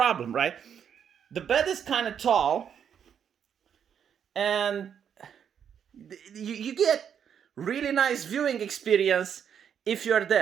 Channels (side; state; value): left; quieter; 8.2 dB